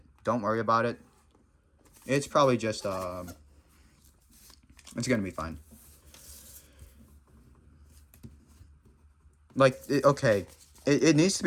don't worry about it. It's probably just it's gonna be fine. Like okay, it needs to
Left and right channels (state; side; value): identical; both; correlation 1.00